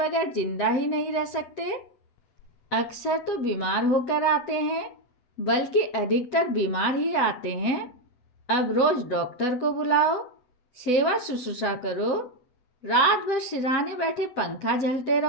जिंदा ही नहीं रह सकते। अक्सर तो बीमार होकर आते हैं, बल्कि अधिकतर बीमार ही आते हैं। अब रोज डॉक्टर को बुलाओ, सेवा शुश्रूषा करो, रात भर सिरहाने बैठे पंखा झलते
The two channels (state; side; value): late; right; 8.1 ms